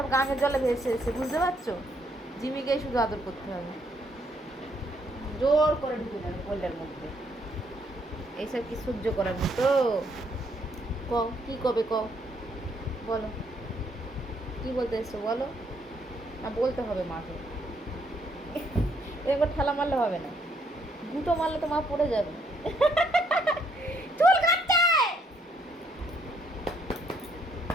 গাঙের জলে ভেসে এসছে, বুঝতে পারছো? জিমিকেই শুধু আদর করতে হবে, জোর করে ঢুকে যাবে কোলের মধ্যে। এইসব কি সহ্য করার মতো? কও কি কবে, কও বলো, কি বলতে এসছো বলো। না বলতে হবে মাকে, এরকম ঠেলা মারলে হবে না, গুঁতো মারলে তো মা পড়ে যাবে। চুল কাটছে,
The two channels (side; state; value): both; normal; correlation 0.71